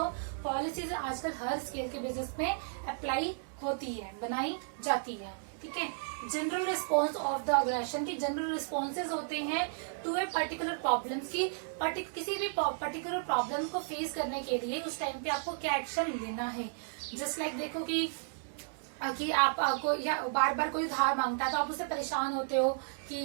पॉलिसीज आजकल हर स्केल के बिजनेस में अप्लाई होती है, बनाई जाती है। ठीक है, general response of the organisation की जनरल रिस्पॉन्सेज होते हैं टू ए पर्टिकुलर प्रॉब्लम की, किसी भी पर्टिकुलर प्रॉब्लम को फेस करने के लिए उस टाइम पे आपको क्या एक्शन लेना है। जस्ट लाइक देखो कि आपको या बार बार कोई उधार मांगता है तो आप उससे परेशान होते हो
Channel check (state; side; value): silent; left; digital silence